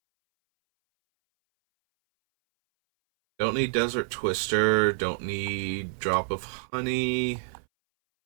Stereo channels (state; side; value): silent; left; 60 dB below the other